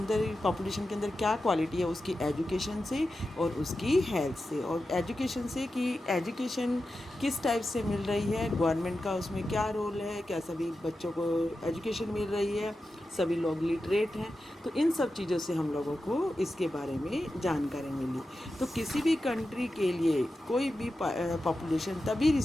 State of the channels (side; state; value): both; normal; correlation 0.92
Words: पॉपुलेशन के अंदर क्या क्वालिटी है, उसकी एजुकेशन से और उसकी हेल्थ से। और एजुकेशन से कि एजुकेशन किस टाइप से मिल रही है, गवर्नमेंट का उसमें क्या रोल है, क्या सभी बच्चों को एजुकेशन मिल रही है, सभी लोग लिटरेट हैं। तो इन सब चीज़ों से हम लोगों को इसके बारे में जानकारी मिली। तो किसी भी कंट्री के लिए कोई भी पॉपुलेशन तभी